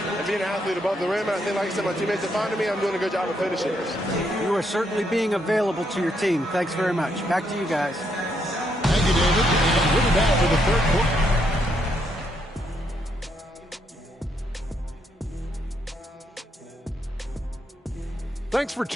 be an athlete above the rim. And I think, like I said, my teammates are finding me. I'm doing a good job of finishing this. You are certainly being available to your team. Thanks very much. Back to you guys. Thank you, David. And we'll be back for the third quarter. Thanks for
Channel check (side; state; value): both; normal; correlation 0.76